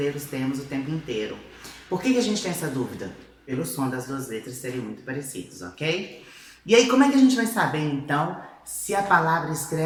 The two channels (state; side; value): identical; both; correlation 1.00